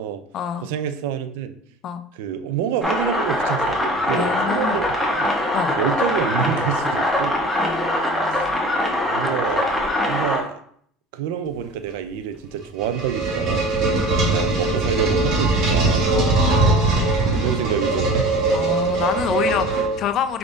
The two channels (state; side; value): normal; both; correlation 0.39